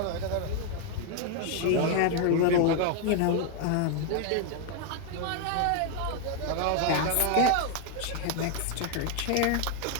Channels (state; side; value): different; both; correlation 0.00